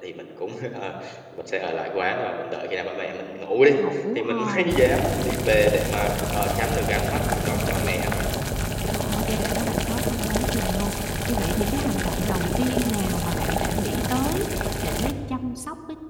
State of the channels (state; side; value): identical; both; correlation 1.00